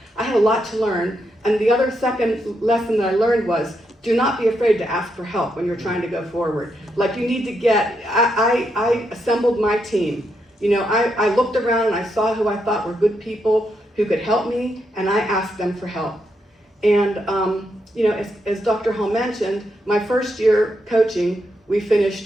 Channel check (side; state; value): both; normal; correlation 0.81